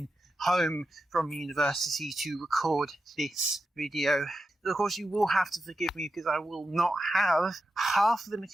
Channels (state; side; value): normal; both; correlation 0.90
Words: home from university to record this video. Of course, you will have to forgive me because I will not have half of the